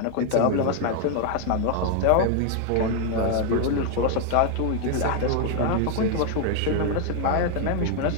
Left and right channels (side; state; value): both; different; correlation 0.00